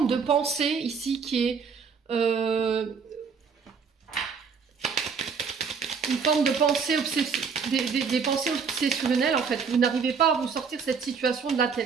de pensée ici qui est une forme de pensée des pensées obsessionnelles en fait. Vous n'arrivez pas à vous sortir cette situation de la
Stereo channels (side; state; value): left; quieter; 5.8 dB